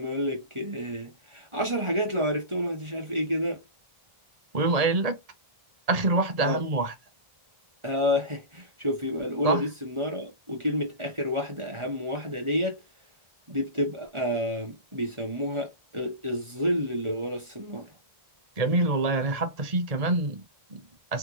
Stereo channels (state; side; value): late; left; 1.4 ms